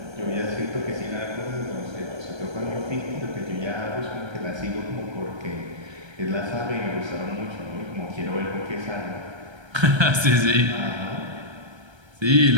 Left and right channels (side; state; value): left; late; 1.3 ms